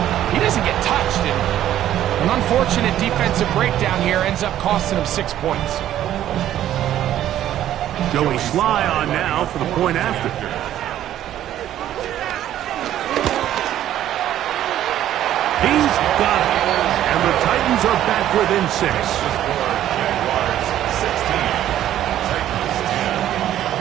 he doesn't get touched. And an unfortunate defensive breakdown here ends up costing him 6 points. Joey Sly on now for the point after. He's got it. And the Titans are back within 6.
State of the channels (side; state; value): left; quieter; 12.0 dB